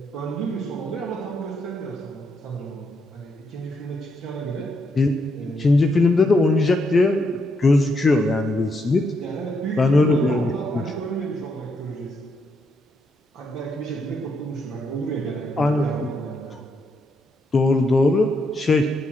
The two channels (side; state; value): both; normal; correlation 0.78